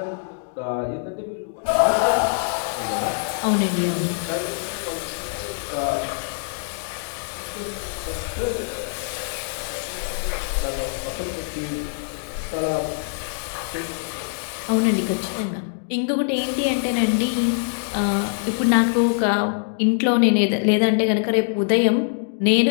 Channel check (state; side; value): silent; right; digital silence